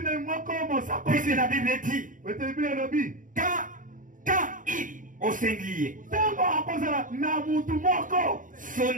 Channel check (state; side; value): late; left; 0.38 ms